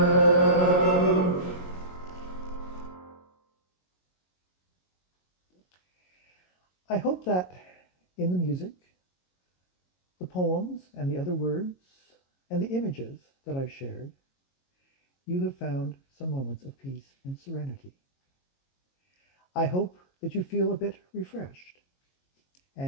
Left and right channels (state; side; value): late; right; 22 ms